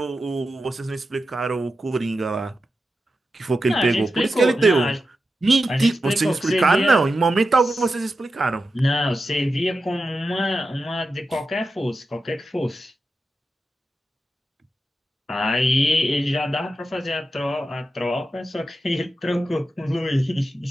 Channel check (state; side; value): normal; both; correlation 0.90